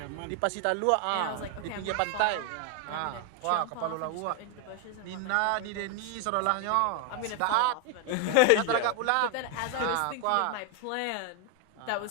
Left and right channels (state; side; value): different; both; correlation 0.01